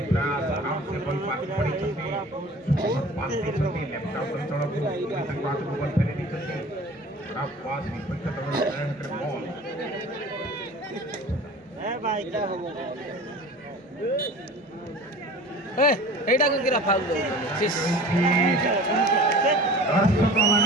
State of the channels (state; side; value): normal; both; correlation 0.41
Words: ପ୍ରୟାସ ଆରାମ ସେ ବଲ୍ ପାସ୍ ପଡ଼ିଛନ୍ତି ପାସ୍ ଦେଇଛନ୍ତି ଲେଫ୍ଟ ଆଉଟ୍ ଅଞ୍ଚଳକୁ ତାଙ୍କ ହାତକୁ ବଲ୍ ଫେରି ଦେଇଛନ୍ତି ଖରାପ ପାସ୍ ବିପକ୍ଷ ଦଳର ହାତରେ ବଲ୍ এইটা কোন কিরা ফাউল দো সিস